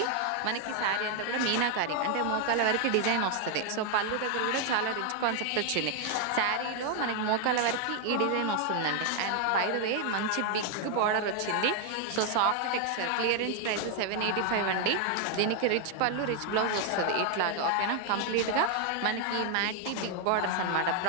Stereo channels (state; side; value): different; both; correlation 0.01